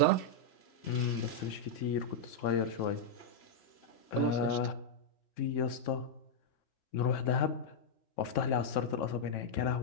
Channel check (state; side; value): late; right; 3.6 ms